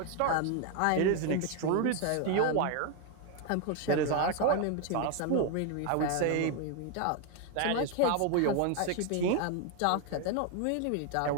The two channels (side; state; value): both; different; correlation 0.01